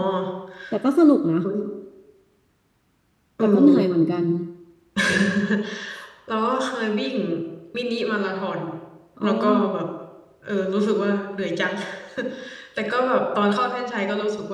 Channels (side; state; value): both; identical; correlation 1.00